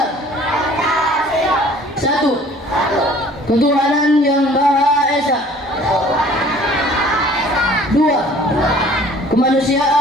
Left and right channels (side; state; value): both; normal; correlation 0.52